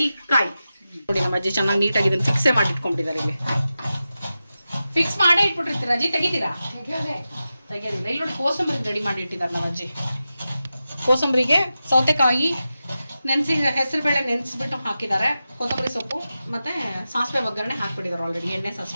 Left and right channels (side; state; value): both; inverted; correlation -0.92